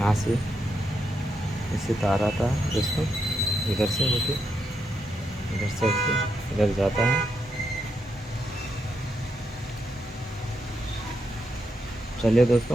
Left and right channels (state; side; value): normal; both; correlation 0.82